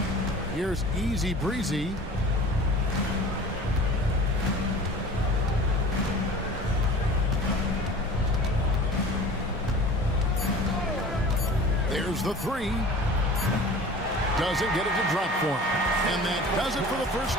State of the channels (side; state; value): both; normal; correlation 0.41